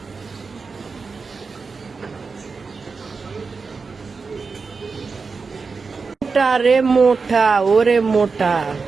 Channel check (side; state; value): left; quieter; 4.7 dB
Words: মোটা রে মোটা, ওরে মোটা,